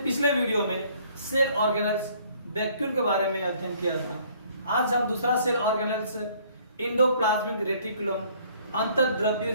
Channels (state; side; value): inverted; both; correlation -0.59